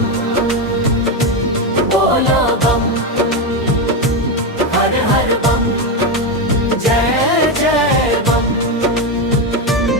बोलो बम, हर हर बम, जय जय बम।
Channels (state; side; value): normal; both; correlation 0.10